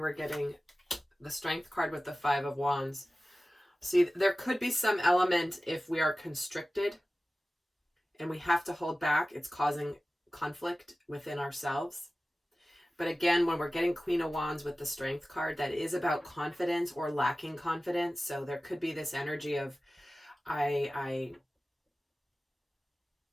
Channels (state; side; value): normal; both; correlation 0.96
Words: we're getting the Strength card with the 5 of Wands. See, there could be some element if we are constricted and we have to hold back, it's causing conflict within ourselves. But again, when we're getting Queen of Wands with the Strength card, that is about confidence or lacking confidence. So there could be this energy of